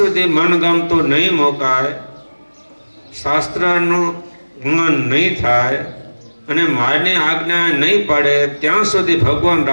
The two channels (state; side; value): inverted; both; correlation -1.00